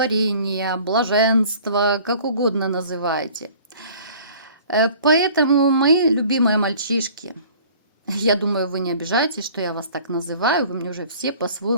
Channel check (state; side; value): inverted; both; correlation -0.49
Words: блаженства, как угодно называйте. Поэтому, мои любимые мальчишки, я думаю, вы не обижаетесь, что я вас так называю, вы мне уже все